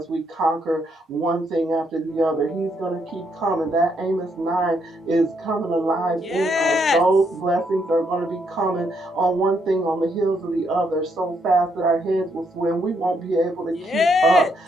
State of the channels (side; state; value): both; normal; correlation 0.75